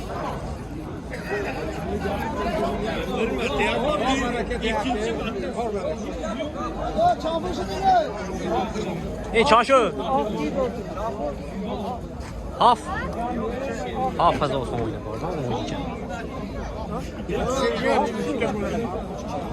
Hey çarşı. Haf fazla olsun oynadı oradan oynayacak.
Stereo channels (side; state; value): both; identical; correlation 1.00